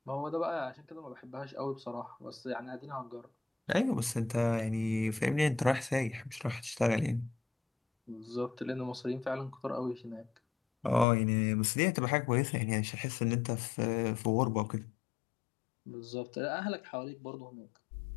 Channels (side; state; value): right; drops out; at 11.1 s